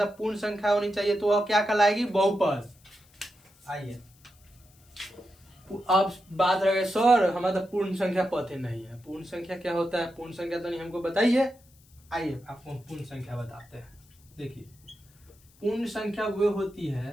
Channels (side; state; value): left; noise; hiss, 30 dB below the sound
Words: पूर्ण संख्या होनी चाहिए, तो वह क्या कहलाएगी, बहुपद। आइए अब बात रह गई सर हमारा तो पूर्ण संख्या पता नहीं है। पूर्ण संख्या क्या होता है, पूर्ण संख्या तो नहीं हमको बताइए। आइए आपको हम पूर्ण संख्या बताते हैं। देखिए पूर्ण संख्या वो होती